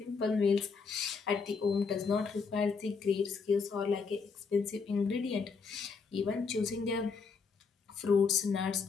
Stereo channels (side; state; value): right; quieter; 5.2 dB